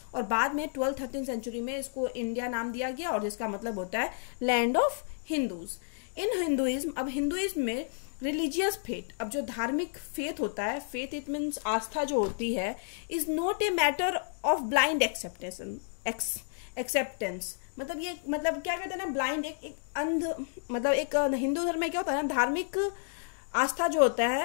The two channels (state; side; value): silent; right; digital silence